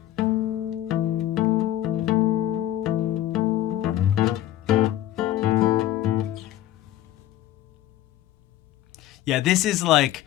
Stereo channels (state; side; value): quieter; right; 13.4 dB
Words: Yeah, this is